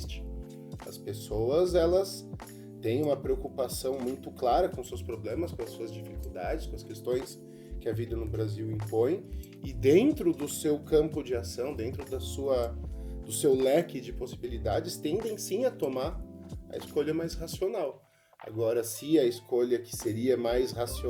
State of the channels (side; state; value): both; identical; correlation 1.00